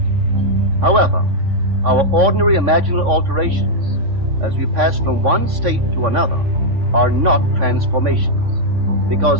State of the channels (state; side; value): late; left; 3.5 ms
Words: However, our ordinary imaginal alterations, as we pass from one state to another, are not transformations,